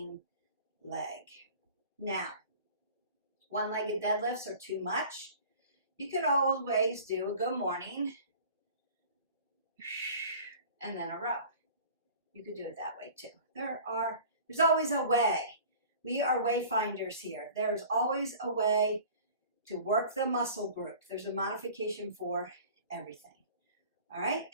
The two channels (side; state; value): both; inverted; correlation -0.44